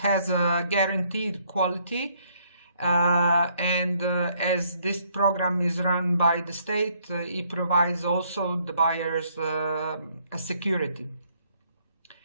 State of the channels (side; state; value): both; inverted; correlation -0.68